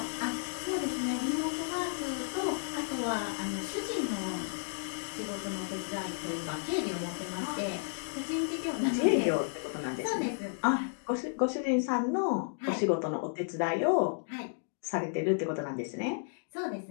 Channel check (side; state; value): right; silent; digital silence